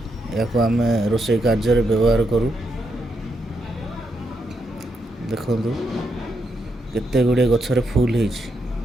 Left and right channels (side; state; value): both; normal; correlation 0.81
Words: या आम रोषे कार्य व्यवहार करूँ देखु केते गुड़े गछरे फूल है